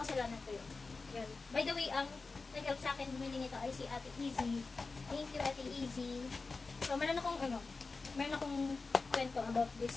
kasalanan ko yun. Yan. By the way, ang nag-help sa akin bumili nito ay si Ate Easy. Thank you, Ate Easy. So, meron akong kwento about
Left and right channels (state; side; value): quieter; right; 4.0 dB